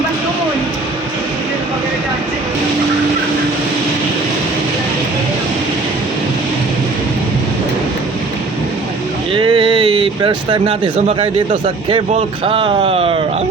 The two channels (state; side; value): quieter; left; 3.6 dB